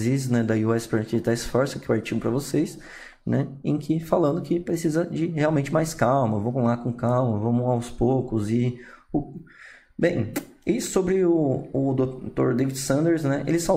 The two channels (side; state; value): both; identical; correlation 1.00